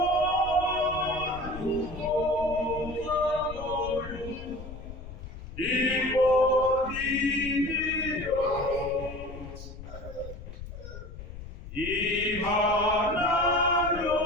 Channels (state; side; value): noise; left; rumble, 12 dB below the sound